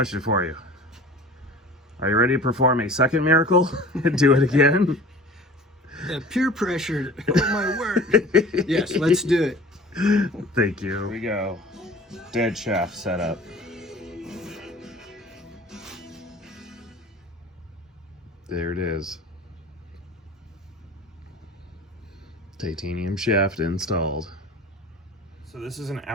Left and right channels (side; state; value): both; normal; correlation 0.43